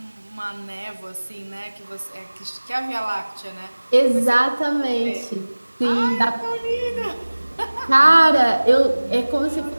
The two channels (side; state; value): both; inverted; correlation -1.00